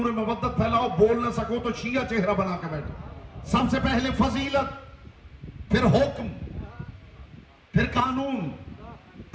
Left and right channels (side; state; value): both; identical; correlation 1.00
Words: مودت پھیلاؤ. بول نہ سکو تو شیعہ چہرہ بنا کے بیٹھو. سب سے پہلے فضیلت، پھر حکم، پھر قانون،